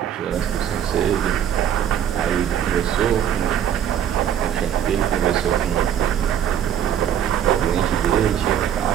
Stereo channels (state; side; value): quieter; left; 9.7 dB